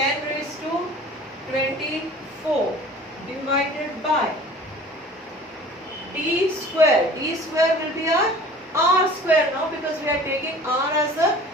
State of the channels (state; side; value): normal; both; correlation 0.45